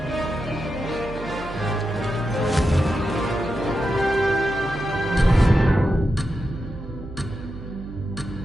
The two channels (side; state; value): right; noise; hum, 13 dB below the sound